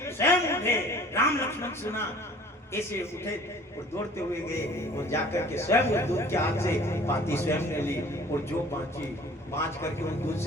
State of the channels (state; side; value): normal; both; correlation 0.49